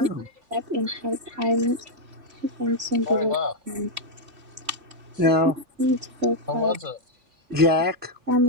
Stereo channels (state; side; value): late; left; 3.5 ms